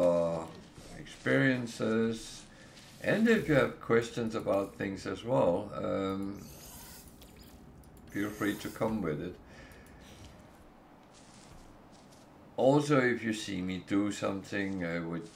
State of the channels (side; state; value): both; identical; correlation 1.00